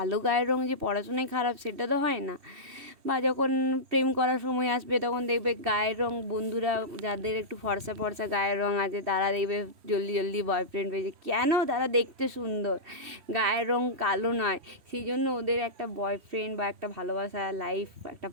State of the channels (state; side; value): late; left; 3.1 ms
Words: গায়ের রং যে পড়াশোনায় খারাপ সেটা তো হয় না। বা যখন প্রেম করার সময় আসবে তখন দেখবে গায়ের রং, বন্ধুরা যাদের একটু ফর্সা ফর্সা গায়ের রং আছে তারা দেখবে জলদি জলদি বয়ফ্রেন্ড পেয়েছে, কেন? তারা দেখতে সুন্দর, গায়ের রং কালো নয়, সেই জন্য ওদের একটা বয়ফ্রেন্ড বা একটা ভালোবাসা লাইফ একটা